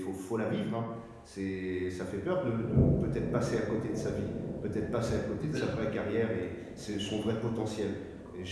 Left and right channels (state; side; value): identical; both; correlation 1.00